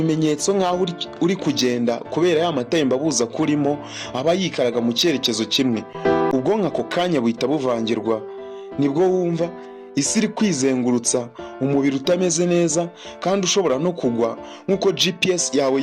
nk'aho uri kugenda kubera ya matembabuzi akurimo aba yikaraga mu cyerekezo kimwe. Ubwonko ako kanya buhita buvangirwa. Nibwo wumva isi iri kwizengurutsa, umubiri utameze neza kandi ushobora no kugwa nk'uko GPS yawe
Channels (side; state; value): both; identical; correlation 1.00